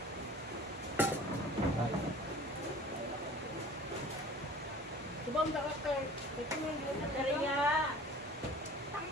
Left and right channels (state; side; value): normal; both; correlation 0.45